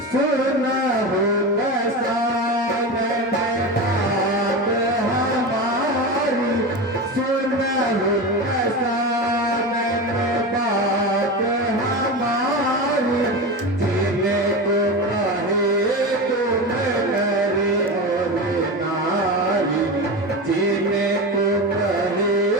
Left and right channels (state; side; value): normal; both; correlation 0.23